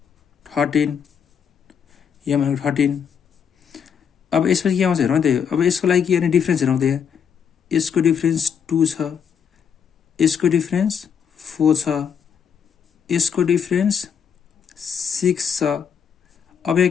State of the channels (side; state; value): right; quieter; 7.3 dB